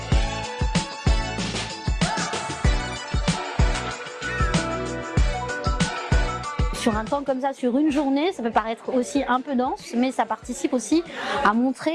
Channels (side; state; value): both; identical; correlation 1.00